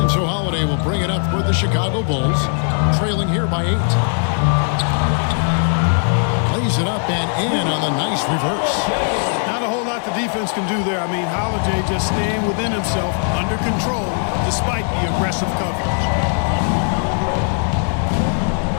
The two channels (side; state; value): right; silent; 56 dB below the other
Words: so Holiday will bring it up for the Chicago Bulls. Trailing here by 8. Plays it up and in on the nice reverse. Not a whole lot the defense can do there. I mean, Holiday just staying within himself, under control, despite the aggressive coverage.